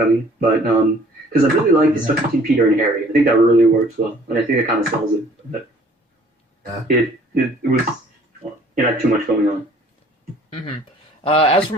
But because I really like the stuff between Peter and Harry, I think that really works well, and I think it kind of sells it. But Yeah. it was it had too much going on. hmm As for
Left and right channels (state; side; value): normal; both; correlation 0.55